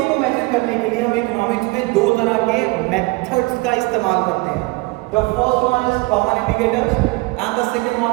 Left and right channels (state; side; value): quieter; left; 24.3 dB